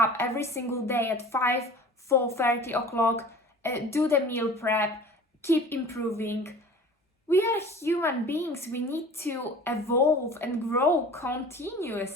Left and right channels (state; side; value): normal; both; correlation 0.43